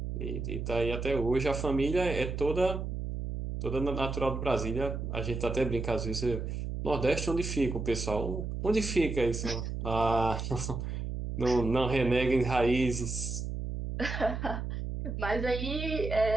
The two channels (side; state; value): right; noise; hum, 4 dB below the sound